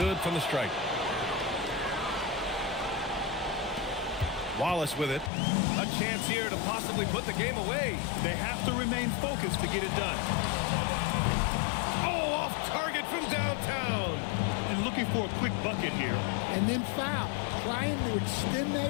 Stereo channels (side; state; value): right; drops out; at 5.3 s